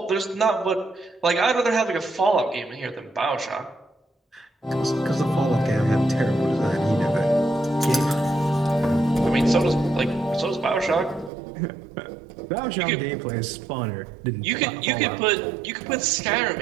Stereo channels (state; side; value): drops out; left; at 11.3 s